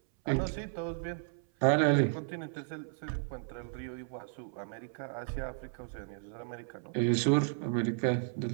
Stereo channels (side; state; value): left; silent; 55 dB below the other